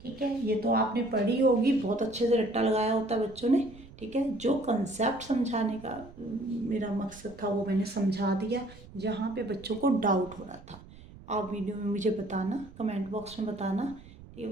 ठीक है, ये तो आपने पढ़ी होगी, बहुत अच्छे से रट्टा लगाया होता है बच्चों ने। ठीक है, जो कंसेप्ट समझाने का मेरा मकसद था वो मैंने समझा दिया। जहाँ पे बच्चों को डाउट हो रहा था, आप वीडियो में मुझे बताना, कमेंट बॉक्स में बताना। ठीक है,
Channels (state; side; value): noise; right; rumble, 19 dB below the sound